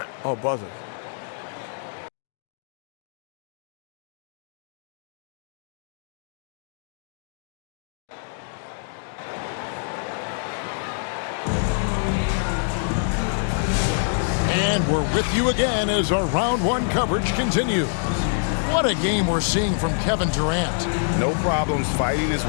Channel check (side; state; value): right; silent; digital silence